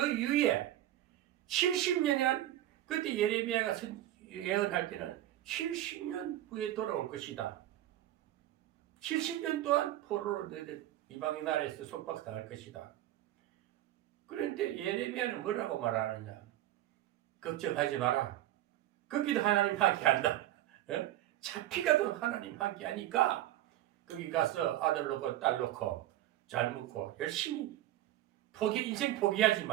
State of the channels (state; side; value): quieter; left; 13.9 dB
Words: 이후에 70년이란 그때 예레미야가 예언할 때는 70년 후에 돌아올 것이다. 70년 동안 포로로 너희들 이방인 나라에서 속박당할 것이다. 그런데 예레미야는 뭐라고 말하느냐? 걱정하지 마라. 거기도 하나님 함께한다. 잡히가도 하나님 함께하니까 거기 가서 아들 놓고 딸 놓고 잘 먹고 열심히 인생 포기하지